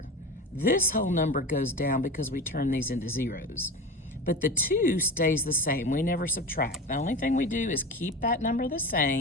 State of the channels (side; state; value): both; normal; correlation 0.29